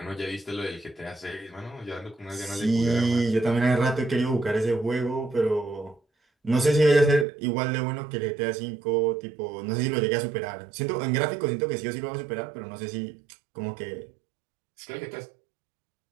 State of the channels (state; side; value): drops out; left; at 7.2 s